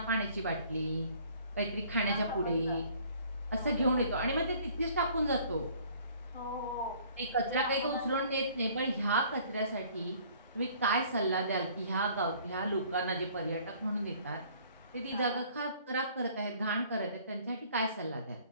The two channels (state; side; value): inverted; both; correlation -0.55